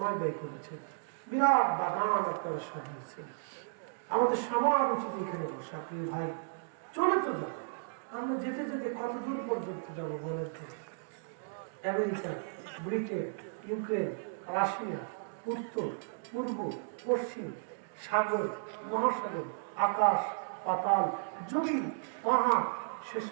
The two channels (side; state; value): left; silent; digital silence